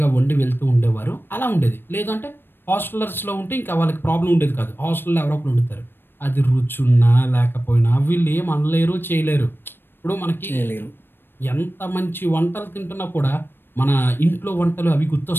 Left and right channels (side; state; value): right; late; 0.099 ms